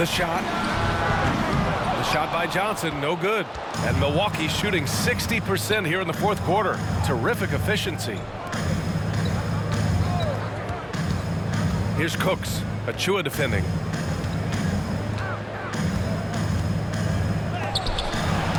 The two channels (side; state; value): both; identical; correlation 1.00